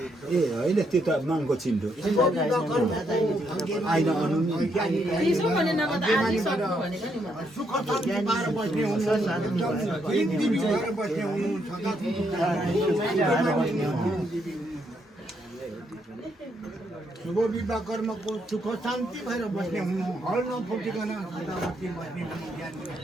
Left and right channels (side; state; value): both; normal; correlation 0.76